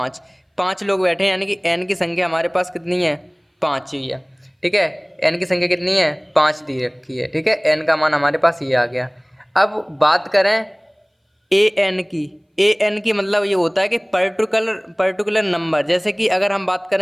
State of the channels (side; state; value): both; identical; correlation 1.00